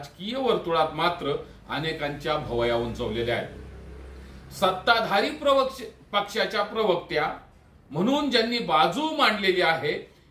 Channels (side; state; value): both; identical; correlation 1.00